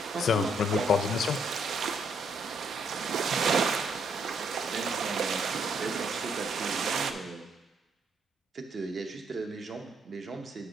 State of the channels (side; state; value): both; normal; correlation 0.72